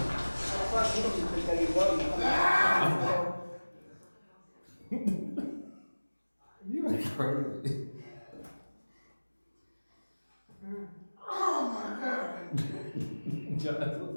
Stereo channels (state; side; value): inverted; both; correlation -1.00